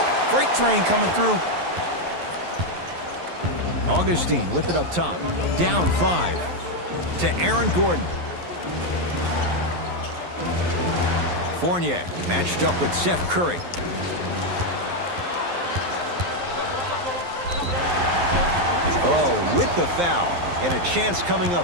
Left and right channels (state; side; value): late; left; 11 ms